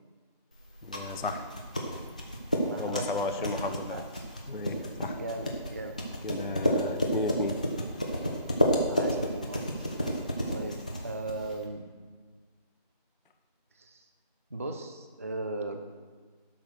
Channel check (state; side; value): inverted; both; correlation -0.53